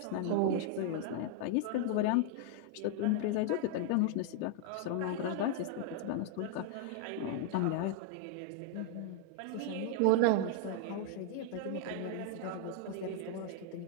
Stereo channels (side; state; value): both; different; correlation 0.00